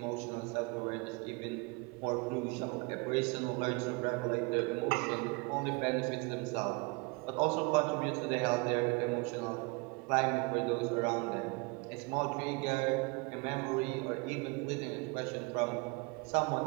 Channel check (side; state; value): left; quieter; 28.6 dB